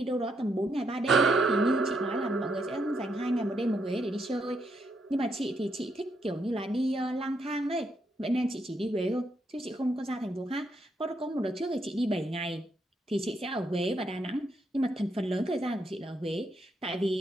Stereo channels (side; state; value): both; normal; correlation 0.77